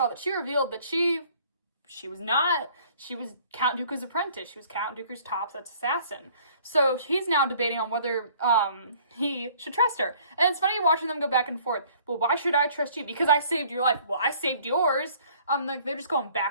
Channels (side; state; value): both; inverted; correlation -0.56